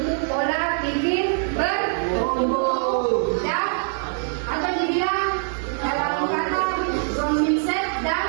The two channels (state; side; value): silent; left; 59 dB below the other